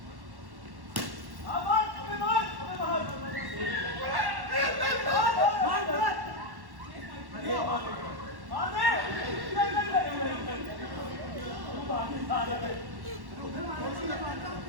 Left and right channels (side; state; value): left; late; 1.1 ms